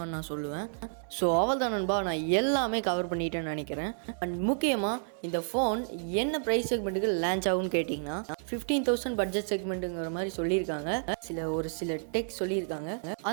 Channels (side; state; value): left; silent; digital silence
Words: நான் சொல்லுவேன். ஸோ அவ்வளோதான் நண்பா, நான் எல்லாமே கவர் பண்ணிட்டேன்னு நினைக்கிறேன். அண்ட் முக்கியமாக இந்த ஃபோன் என்ன ப்ரைஸ் செக்மெண்ட்டுக்கு லான்ச் ஆகும்னு கேட்டிங்கன்னா 15,000 பட்ஜெட் செக்மெண்ட்டுங்கிற மாதிரி சொல்லியிருக்காங்க. ஒரு சில டெக் சொல்லியிருக்காங்க.